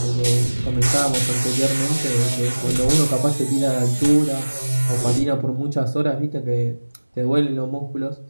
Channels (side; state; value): both; inverted; correlation -1.00